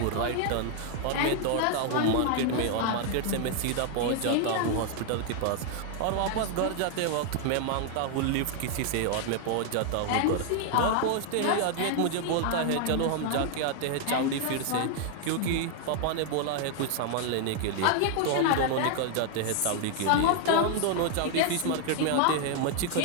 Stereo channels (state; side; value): different; both; correlation 0.00